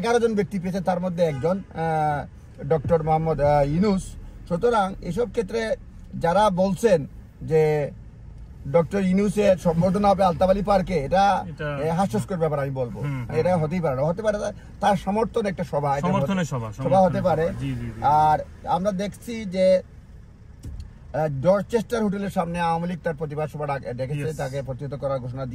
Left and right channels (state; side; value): identical; both; correlation 1.00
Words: জন ব্যক্তি পেয়েছে, তার মধ্যে একজন ডক্টর মোহাম্মদ ইউনূস। সুতরাং এসব ক্ষেত্রে যারা বলছেন যে ডক্টর ইউনূসের সম্বর্ধনা হবে আলতাবালি পার্কে, এটা হাস্যস্কর ব্যাপার আমি বলবো। এটা হতেই পারে না, হতে পারে তার সমর্থন একটা সভা হতে পারে। আর আমরা দেখছি যে ডরচেস্টার হোটেলের সামনে আওয়ামী লীগ তার প্রতিবাদ সভা ডেকেছে, তাকে প্রতিহত করার ঘোষণা